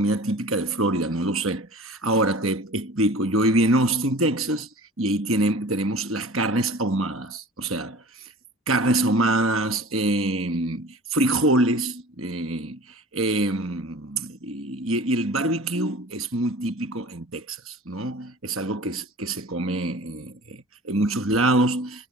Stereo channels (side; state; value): both; normal; correlation 0.42